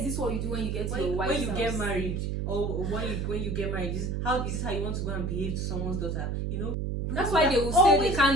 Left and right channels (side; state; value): right; noise; hum, 1 dB below the sound